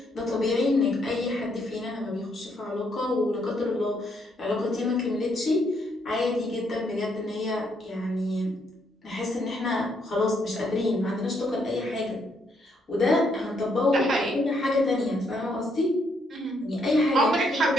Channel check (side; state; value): both; normal; correlation 0.73